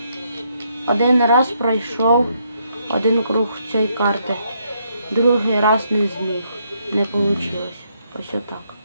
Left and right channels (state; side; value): inverted; both; correlation -0.74